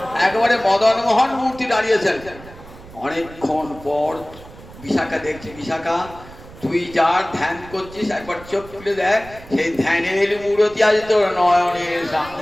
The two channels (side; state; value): right; noise; rumble, 19 dB below the sound